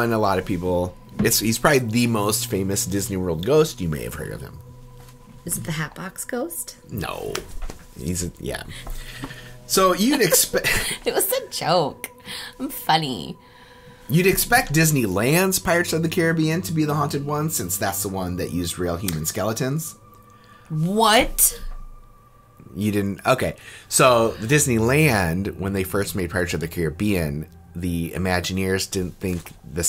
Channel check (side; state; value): both; identical; correlation 1.00